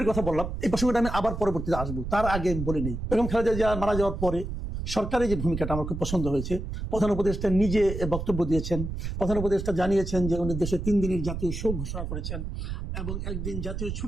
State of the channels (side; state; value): right; noise; rumble, 5 dB below the sound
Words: কথা বললাম, এই প্রসঙ্গটা আমি আবার পরবর্তীতে আসবো, তার আগে বলে নেই বেগম খালেদা জিয়া মারা যাওয়ার পরে সরকারের যে ভূমিকাটা আমার খুব পছন্দ হয়েছে। প্রধান উপদেষ্টা নিজে বক্তব্য দিয়েছেন। প্রধান উপদেষ্টা জানিয়েছেন যে উনি দেশে 3 দিনের জাতীয় শোক ঘোষণা করেছেন এবং 1 দিন জাতীয়